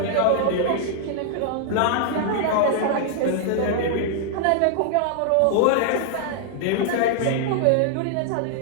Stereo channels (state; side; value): different; both; correlation -0.01